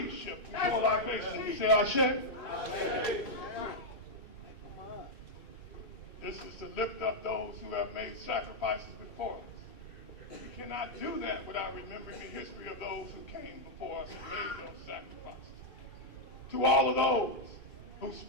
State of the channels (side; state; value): right; late; 3.3 ms